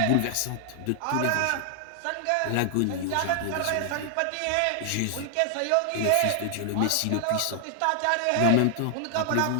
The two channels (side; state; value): both; different; correlation 0.00